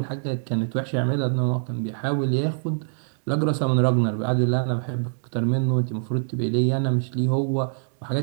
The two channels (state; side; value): silent; left; digital silence